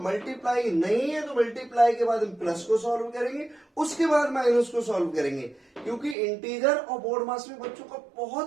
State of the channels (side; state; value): left; drops out; at 6.2 s